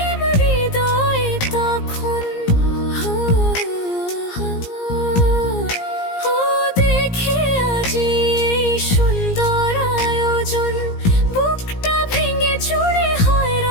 হৃদয়ে তখন। ও দেখে আজি এই সুন্দর আয়োজন, বুকটা ভেঙে চুরে হয়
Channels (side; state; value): right; late; 17 ms